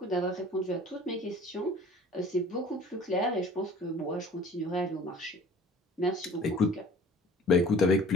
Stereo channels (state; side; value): normal; both; correlation 0.47